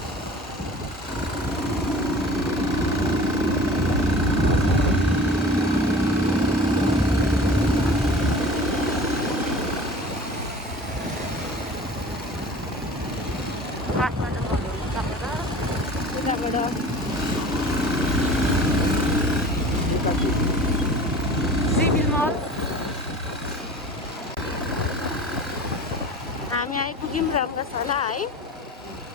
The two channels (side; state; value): both; normal; correlation 0.41